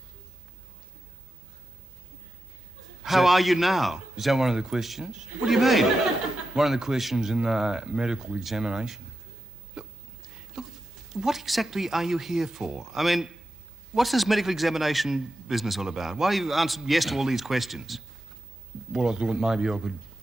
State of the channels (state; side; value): normal; both; correlation 0.90